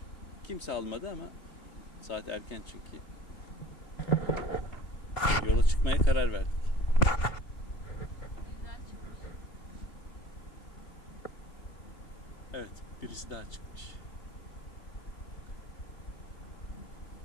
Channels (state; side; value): late; right; 3.2 ms